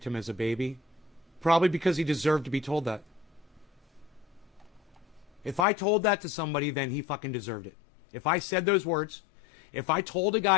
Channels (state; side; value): drops out; right; at 5.7 s